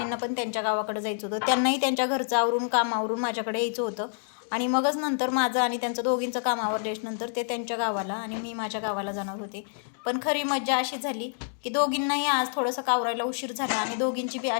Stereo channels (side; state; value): right; silent; digital silence